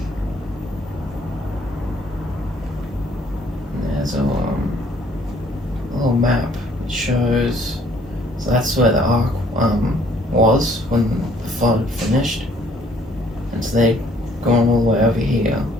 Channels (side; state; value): both; normal; correlation 0.61